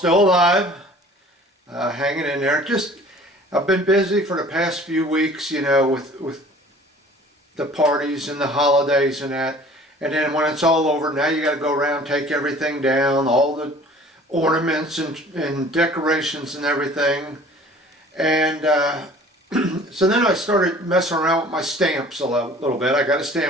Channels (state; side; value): normal; both; correlation 0.49